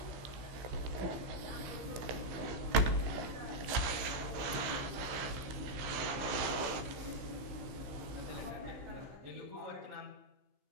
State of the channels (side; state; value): left; late; 16 ms